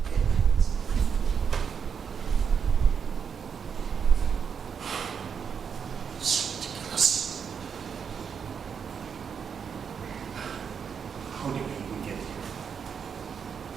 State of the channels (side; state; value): left; quieter; 6.9 dB